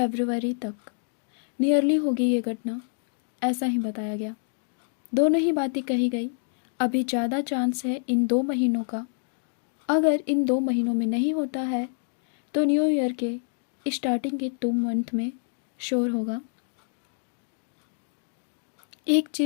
तक नियरली होगी ये घटना, ऐसा ही बताया गया। दोनों ही बातें कही गई। अभी ज़्यादा चांस है इन 2 महीनों का। अगर इन 2 महीनों में नहीं होता है तो न्यू ईयर के स्टार्टिंग के 2 मंथ में श्योर होगा। एक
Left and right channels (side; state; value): right; silent; digital silence